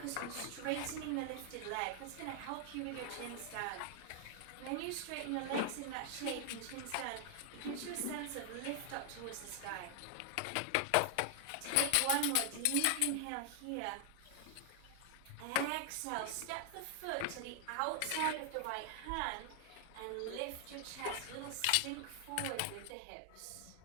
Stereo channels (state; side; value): different; both; correlation 0.00